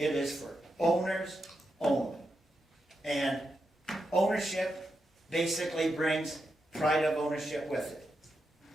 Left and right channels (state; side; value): normal; both; correlation 0.86